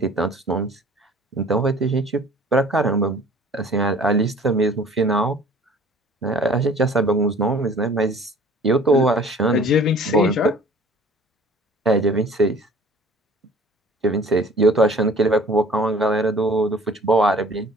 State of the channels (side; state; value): both; normal; correlation 0.50